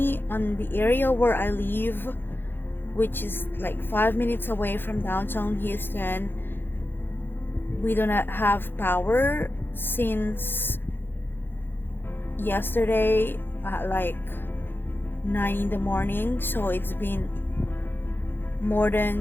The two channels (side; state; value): right; late; 0.10 ms